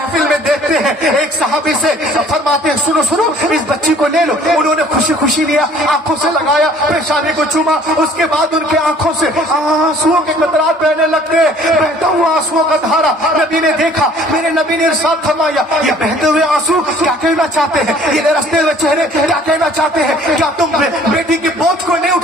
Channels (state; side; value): normal; both; correlation 0.54